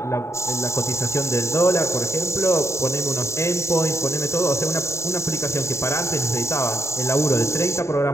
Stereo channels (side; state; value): right; late; 0.14 ms